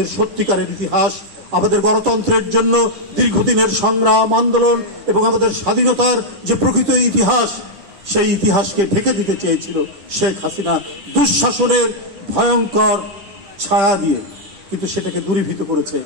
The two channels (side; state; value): left; late; 10 ms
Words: সত্যিকারের ইতিহাস, আমাদের গণতন্ত্রের জন্য দীর্ঘদিনের সংগ্রাম আন্দোলন এবং আমাদের স্বাধীনতার যে প্রকৃত ইতিহাস, সেই ইতিহাসকে ঢেকে দিতে চেয়েছিল শেখ হাসিনা দুঃশাসনের ভয়ঙ্কর ছায়া দিয়ে। কিন্তু সেটাকে দূরীভূত করেছে